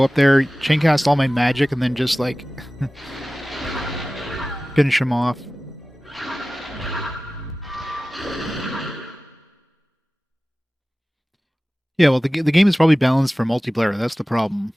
up there, chain cast all my magic, and then just like finish him off. Yeah, well, the game is probably balanced for multiplayer. That's the problem.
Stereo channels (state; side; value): normal; both; correlation 0.97